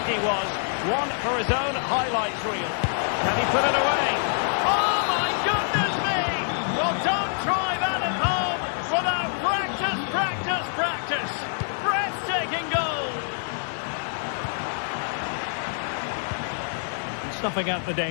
he was. One for his own highlights reel. Can he put it away? Oh my goodness me! Well, don't try that at home without practice, practice, practice. Breathtaking goal. Snuffing out the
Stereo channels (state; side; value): silent; right; digital silence